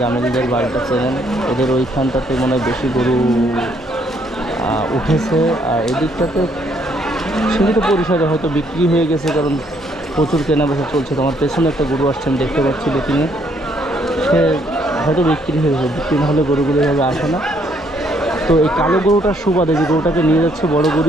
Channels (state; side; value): normal; both; correlation 0.69